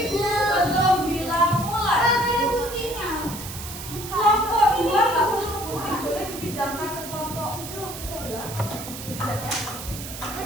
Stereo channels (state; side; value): noise; right; hiss, 10 dB below the sound